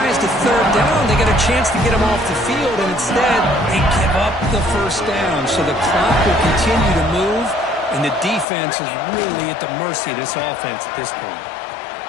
to third down. They get a chance to get them off the field, and instead they give up the first down. So the clock will continue to move, and the defense is really at the mercy of this offense at this point.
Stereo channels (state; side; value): drops out; right; at 8.5 s